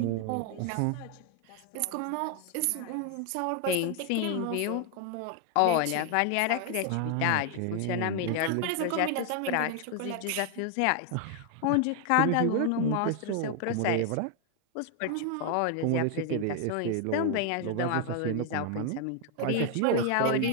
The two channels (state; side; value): different; both; correlation 0.00